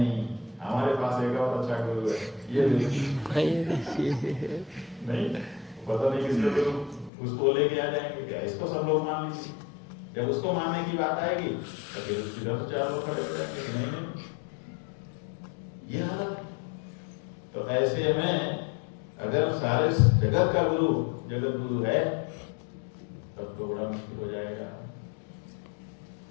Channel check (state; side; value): drops out; right; at 7.1 s